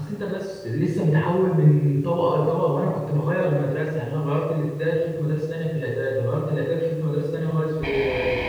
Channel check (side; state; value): both; identical; correlation 1.00